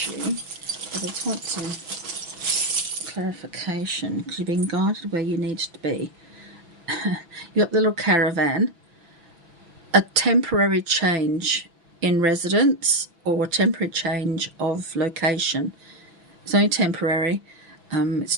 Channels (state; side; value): late; left; 6.0 ms